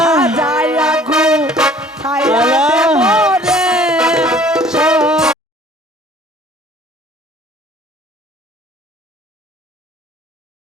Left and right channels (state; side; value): normal; both; correlation 0.53